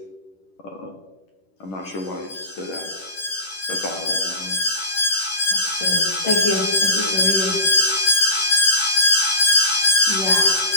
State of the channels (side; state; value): right; late; 10 ms